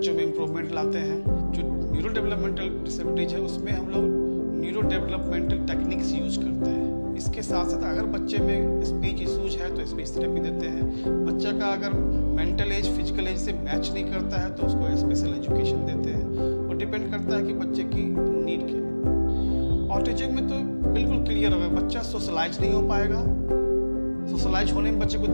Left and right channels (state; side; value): inverted; both; correlation -1.00